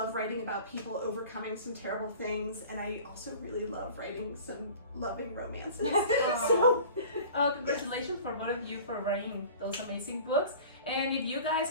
writing about people overcoming some terrible things. And I also really love writing some loving romances. So, congratulations for both of you for writing those amazing books. And if you guys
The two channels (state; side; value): inverted; both; correlation -0.43